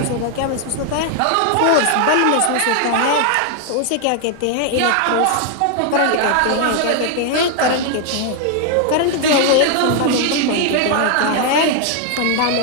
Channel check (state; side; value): different; both; correlation 0.00